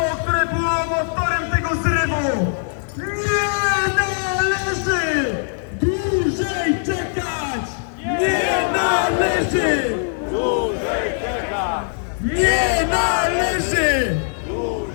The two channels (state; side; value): silent; right; digital silence